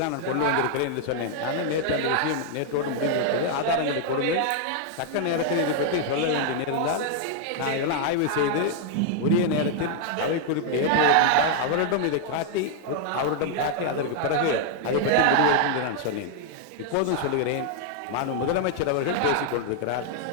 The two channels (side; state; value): both; different; correlation -0.01